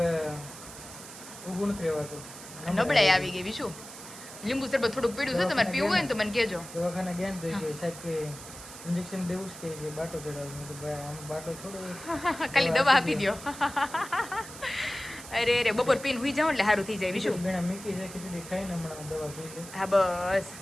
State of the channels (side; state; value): right; noise; hiss, 14 dB below the sound